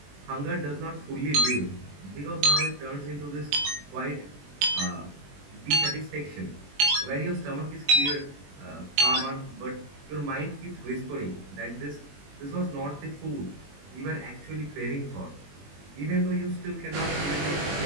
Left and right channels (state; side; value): late; left; 21 ms